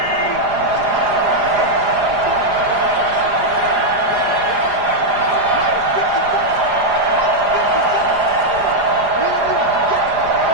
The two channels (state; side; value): late; left; 4.9 ms